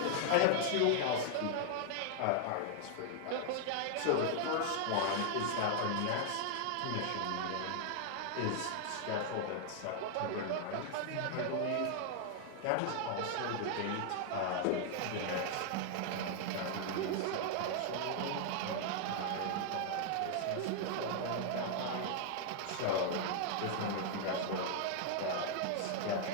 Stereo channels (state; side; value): different; both; correlation 0.00